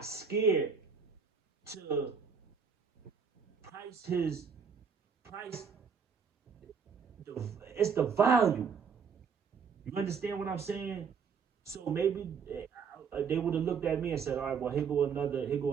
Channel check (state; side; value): quieter; left; 6.2 dB